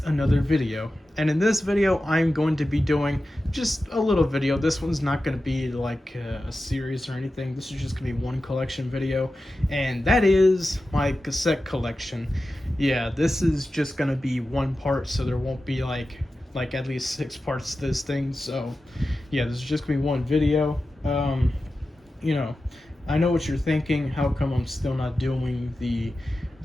another video. And in this video, I'm going to be doing just a little video. This one's not going to be like a series or anything. This is just going to be one collection video, and that is my cassette collection. Yeah, this is just going to be one part, so there won't be like at least 6 parts to this thing. So, yeah, this is just going to be one video. You know, I know what you're thinking. How come I'm still not doing the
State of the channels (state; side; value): normal; both; correlation 0.93